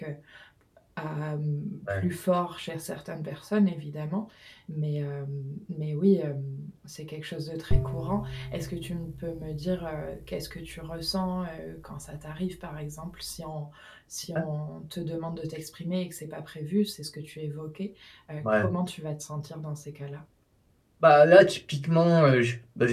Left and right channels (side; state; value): both; identical; correlation 1.00